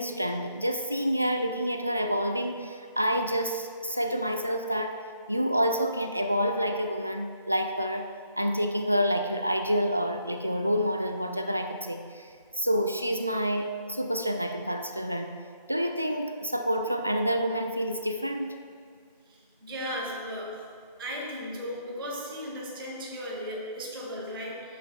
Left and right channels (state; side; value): inverted; both; correlation -0.75